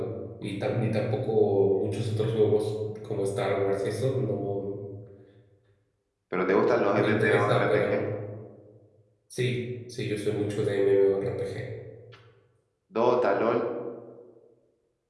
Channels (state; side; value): identical; both; correlation 1.00